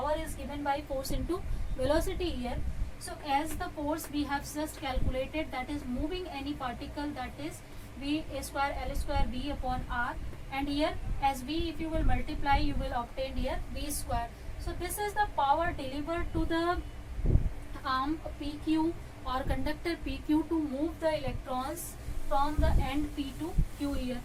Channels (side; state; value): both; identical; correlation 1.00